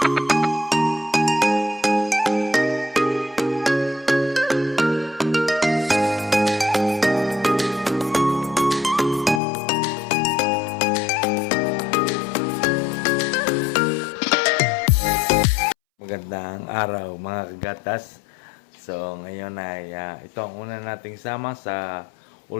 araw mga kagatas. So ngayon ay ito ang una nating sama sa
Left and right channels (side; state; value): right; drops out; at 9.4 s